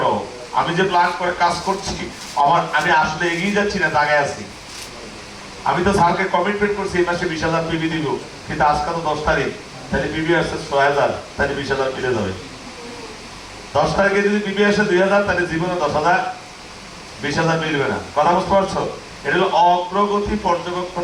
আমি যে প্ল্যান করে কাজ করছি, আমি আসলে এগিয়ে যাচ্ছি না, দাগায় আছি। আমি তো স্যারকে কমিটমেন্ট করছি এই মাসে 20,000 পিবি দিব, কিন্তু আজকে তো 10 তারিখ, তাহলে পিবি আসছে 6,000, তাহলে 20,000 মিলে যাবে। 10 তারিখে যদি পিবি আসে 2,000, তাহলে জীবনে 10,000 20,000 মিলবে না। কথা বুঝতে পারছো? এটা হলো অগ্রগতি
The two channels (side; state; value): both; identical; correlation 1.00